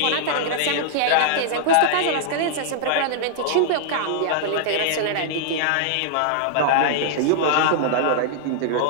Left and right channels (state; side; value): different; both; correlation -0.01